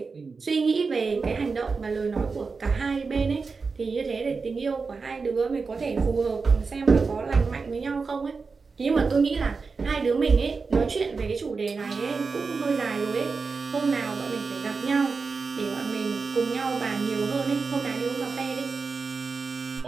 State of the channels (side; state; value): left; quieter; 4.6 dB